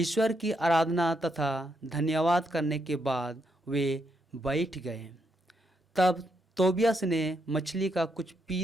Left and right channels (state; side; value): normal; both; correlation 0.79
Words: की आराधना तथा धन्यवाद करने के बाद वे बैठ गए। तब तोबियास ने मछली का कुछ